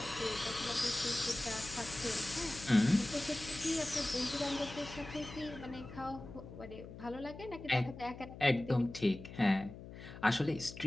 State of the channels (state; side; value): noise; left; hum, 13 dB below the sound